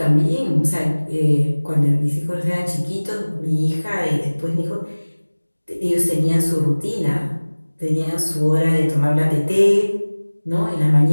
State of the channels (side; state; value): both; inverted; correlation -1.00